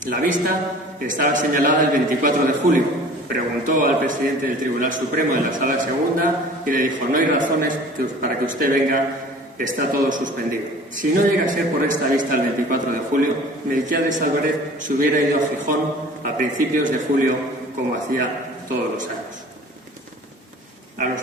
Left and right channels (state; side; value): normal; both; correlation 0.46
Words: La vista estaba señalada el 24 de julio. Preguntó al presidente del Tribunal Supremo en la Sala Segunda y le dijo: «No hay razones para que usted venga, está todo suspendido». Si no llega a ser por esta vista el 24 de julio, Melquiades Álvarez se hubiera ido a Gijón a principios de julio, como hacía todos los años. A los